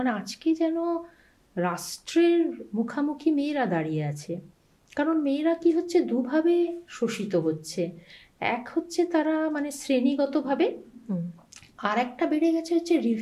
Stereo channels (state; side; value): identical; both; correlation 1.00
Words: আজকে যেন রাষ্ট্রের মুখামুখি মেয়েরা দাঁড়িয়ে আছে। কারণ মেয়েরা কি হচ্ছে, দুভাবে শোষিত হচ্ছে। এক হচ্ছে তারা মানে শ্রেণীগতভাবে, আর একটা বেড়ে গেছে হচ্ছে